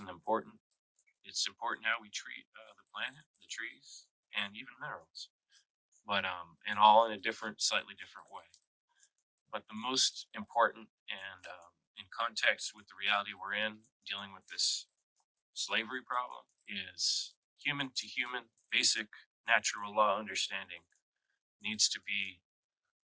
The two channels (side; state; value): both; identical; correlation 1.00